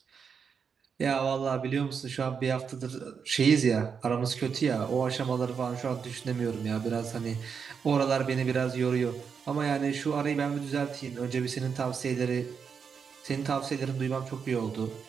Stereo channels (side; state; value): left; quieter; 6.4 dB